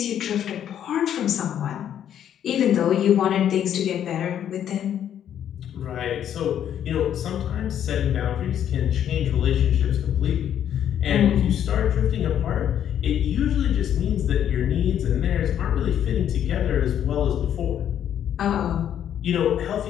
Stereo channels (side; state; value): right; quieter; 9.9 dB